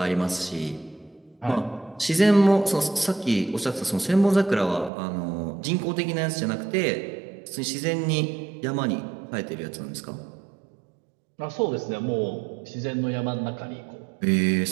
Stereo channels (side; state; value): left; drops out; at 4.9 s